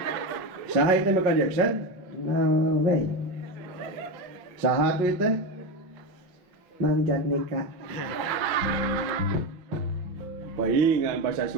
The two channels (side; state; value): left; late; 5.7 ms